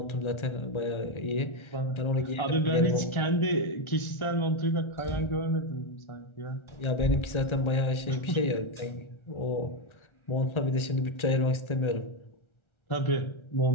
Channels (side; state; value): right; late; 1.3 ms